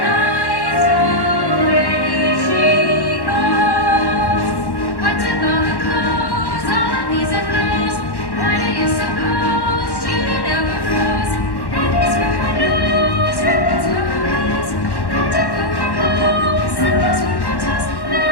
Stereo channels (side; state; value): right; late; 1.1 ms